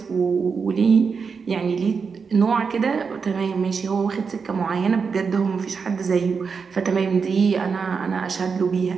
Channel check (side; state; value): left; quieter; 5.5 dB